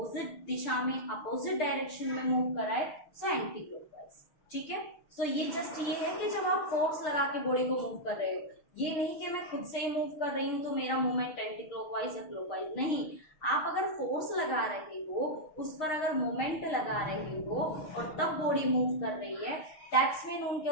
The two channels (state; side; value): late; right; 6.5 ms